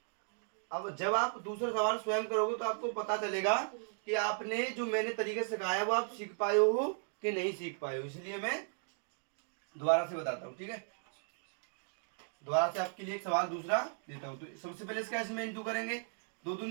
अब जब आप दूसरा सवाल स्वयं करोगे तो आपको पता चलेगा कि आपने जो मैंने तरीके सिखाया वो आप सीख पाए हो कि नहीं सीख पाए हो, इसलिए मैं दोबारा से बताता हूँ, ठीक है। दोबारा से आपके लिए एक सवाल दूसरा देता हूँ। तो सबसे पहले इसका इसमें इंटू करेंगे, 2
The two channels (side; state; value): left; silent; 54 dB below the other